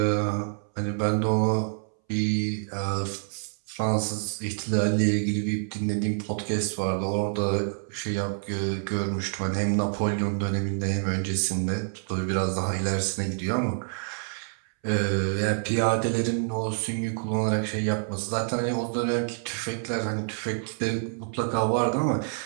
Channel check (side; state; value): left; silent; 60 dB below the other